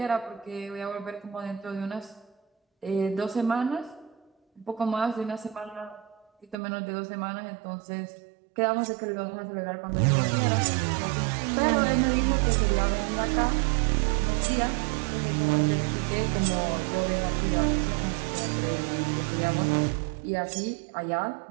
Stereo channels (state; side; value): drops out; left; at 6.6 s